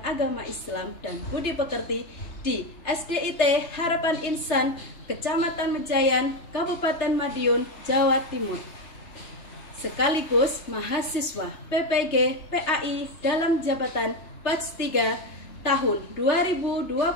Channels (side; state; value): right; late; 3.3 ms